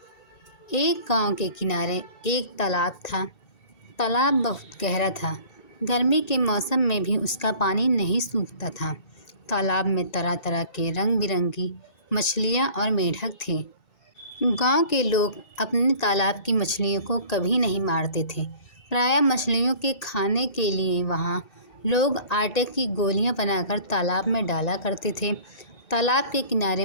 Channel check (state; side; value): late; right; 2.7 ms